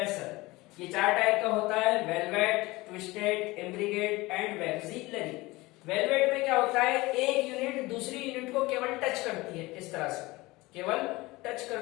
ये 4 टाइप का होता है, velvet, twisted, imbricate and vexillary. Velvet में क्या होता है, एक यूनिट दूसरी यूनिट को केवल टच करती है, इस तरह से केवल टच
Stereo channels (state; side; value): quieter; right; 21.1 dB